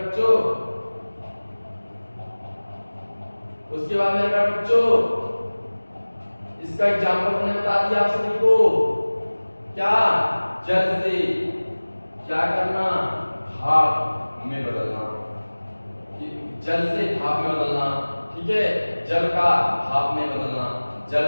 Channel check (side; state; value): both; inverted; correlation -1.00